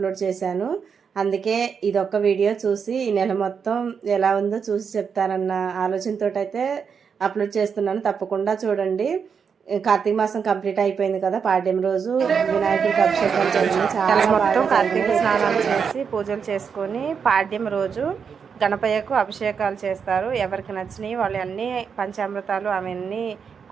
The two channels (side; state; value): left; quieter; 6.5 dB